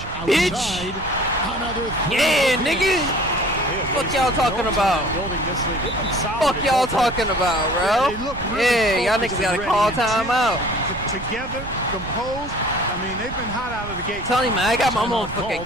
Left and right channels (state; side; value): noise; right; rumble, 12 dB below the sound